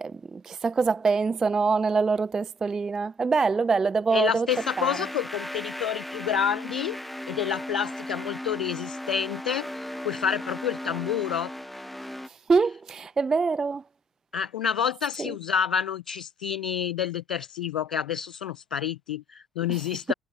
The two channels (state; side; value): normal; both; correlation 0.63